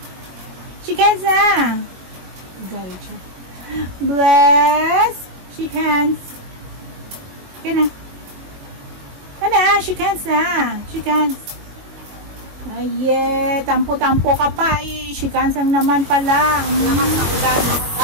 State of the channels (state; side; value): late; left; 22 ms